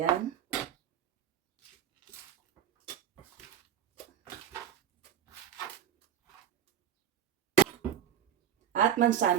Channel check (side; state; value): left; quieter; 9.7 dB